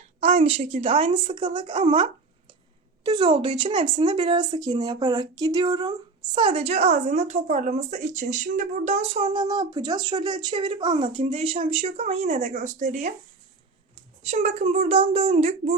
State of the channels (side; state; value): left; quieter; 4.0 dB